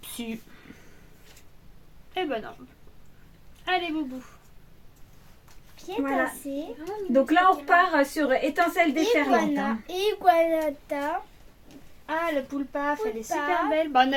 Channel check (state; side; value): identical; both; correlation 1.00